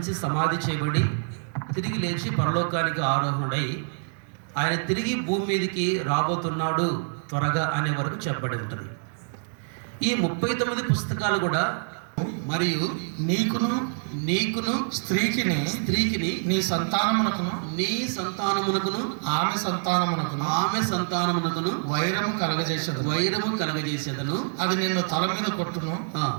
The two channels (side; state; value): left; silent; digital silence